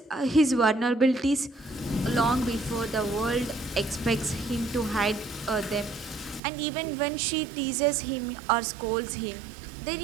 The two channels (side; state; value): left; drops out; at 6.4 s